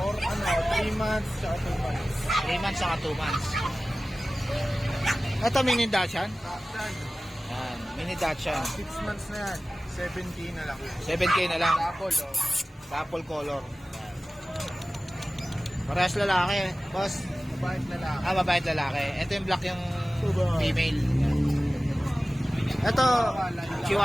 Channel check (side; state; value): both; normal; correlation 0.97